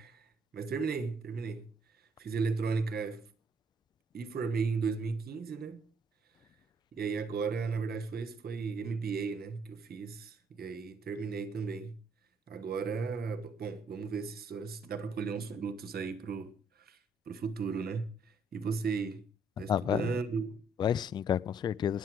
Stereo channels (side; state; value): both; normal; correlation 0.67